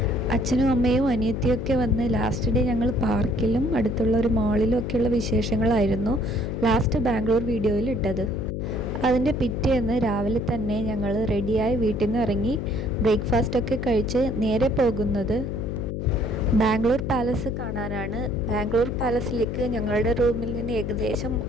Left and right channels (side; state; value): left; noise; hum, 4 dB below the sound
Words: അച്ഛനും അമ്മയും അനിയത്തിയൊക്കെ വന്ന് ലാസ്റ്റ് ഡേ ഞങ്ങൾ പാർക്കിലും അടുത്തുള്ള ഒരു മാളിലും ഒക്കെയുള്ള വിശേഷങ്ങളായിരുന്നു ലാസ്റ്റ് ബാംഗ്ലൂർ വീഡിയോയിൽ ഇട്ടത്. അതിൻ്റെ പിറ്റേന്ന് രാവിലെ തന്നെ ഞങ്ങൾ റെഡിയായി വീട്ടിൽ നിന്ന് ഇറങ്ങി ബ്രേക്ക്ഫാസ്റ്റൊക്കെ കഴിച്ച് നേരെ പോകുന്നത് ബാംഗ്ലൂർ പാലസ് കാണാനാണ്. ബാംഗ്ലൂർ പാലസിലേക്ക് ഞങ്ങളുടെ റൂമിൽ നിന്ന് ഏകദേശം